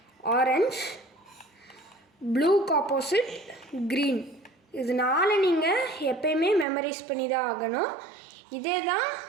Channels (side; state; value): left; drops out; at 6.7 s